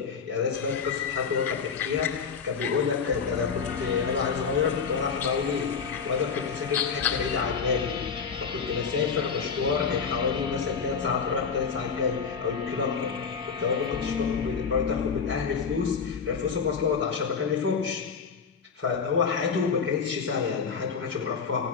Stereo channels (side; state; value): right; quieter; 6.0 dB